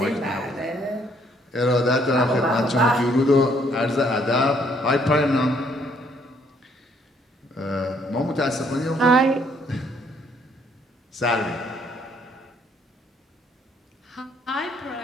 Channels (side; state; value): both; normal; correlation 0.67